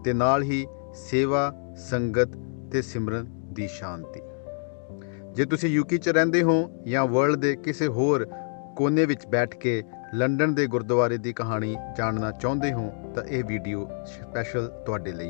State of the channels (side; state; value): right; silent; digital silence